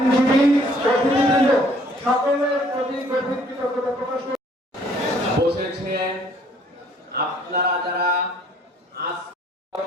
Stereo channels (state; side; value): normal; both; correlation 0.60